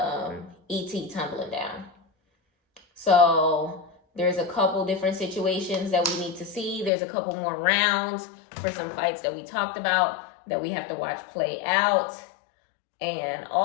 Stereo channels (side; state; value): right; drops out; at 6.9 s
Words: E.T. tumbling down. So there's a couple different situations that we need to see. There's a couple more rounds for some fights that we talked about that we have to watch play out. And